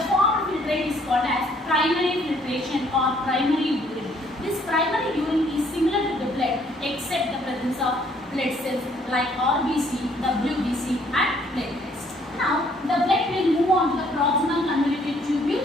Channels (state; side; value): normal; both; correlation 0.64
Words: form of filtrate is called as primary filtration or primary urine. This primary urine is similar to the blood except the presence of blood cells like RBC, WBC and platelets. Now, the blood will move on to the proximal convoluted